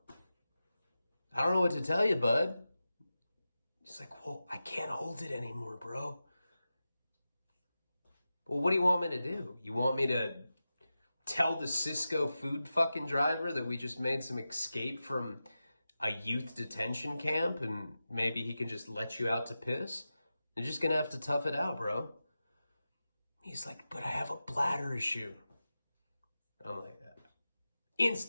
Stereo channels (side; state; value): both; inverted; correlation -0.93